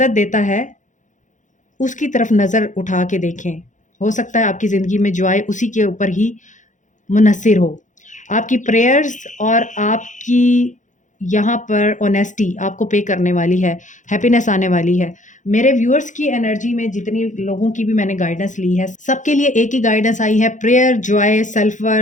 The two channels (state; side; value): late; right; 0.36 ms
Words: देता है उसकी तरफ नज़र उठा के देखें। हो सकता है आपकी ज़िंदगी में जो आए उसी के ऊपर ही मुनहसिर हो। आपकी प्रेयर्स और आपकी यहाँ पर ऑनेस्टी आपको पे करने वाली है, हैप्पीनेस आने वाली है। मेरे व्यूअर्स की एनर्जी में जितनी लोगों की भी मैंने गाइडेंस ली है, सबके लिए एक ही गाइडेंस आई है, prayer, Joy, self